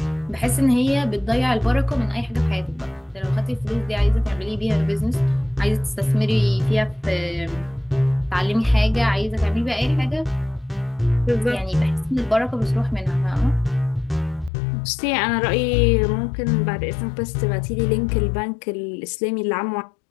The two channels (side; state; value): right; drops out; at 14.5 s